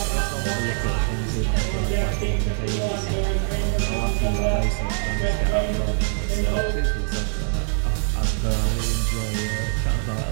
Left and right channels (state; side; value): silent; left; digital silence